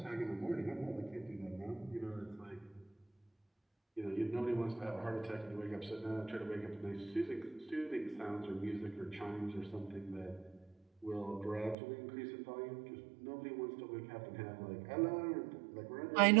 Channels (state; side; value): drops out; left; at 11.8 s